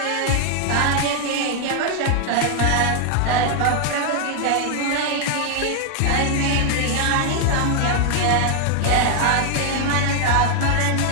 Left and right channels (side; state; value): both; different; correlation 0.00